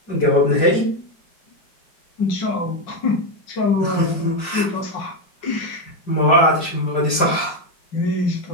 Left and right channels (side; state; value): right; late; 5.0 ms